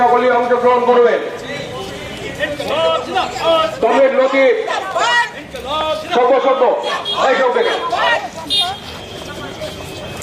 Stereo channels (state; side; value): identical; both; correlation 1.00